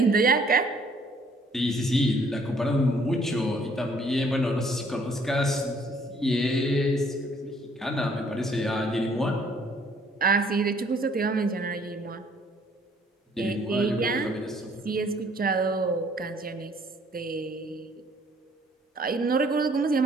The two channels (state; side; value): normal; both; correlation 0.61